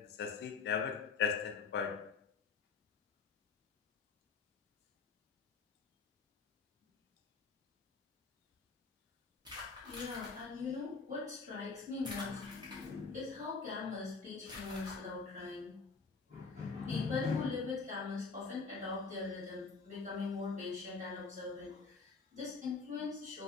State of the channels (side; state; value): right; quieter; 4.8 dB